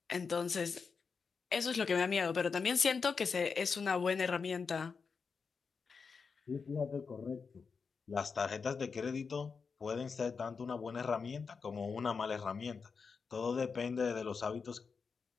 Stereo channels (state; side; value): quieter; right; 5.3 dB